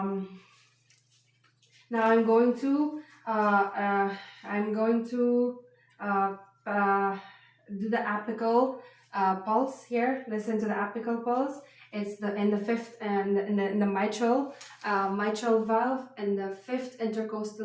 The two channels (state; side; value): identical; both; correlation 1.00